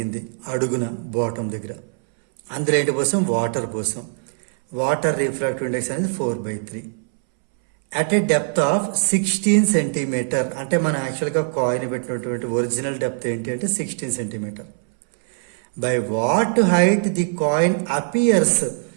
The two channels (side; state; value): left; silent; 64 dB below the other